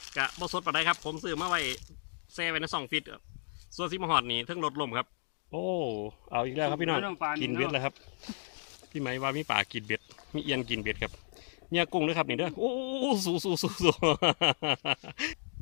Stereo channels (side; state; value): right; silent; digital silence